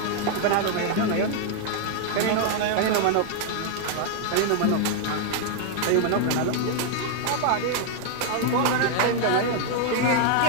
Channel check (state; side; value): different; both; correlation 0.00